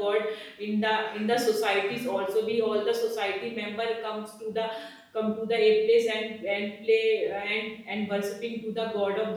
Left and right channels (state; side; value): identical; both; correlation 1.00